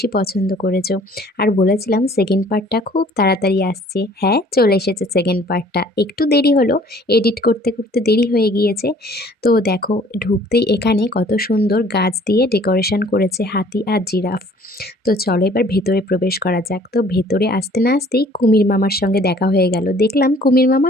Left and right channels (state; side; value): normal; both; correlation 0.55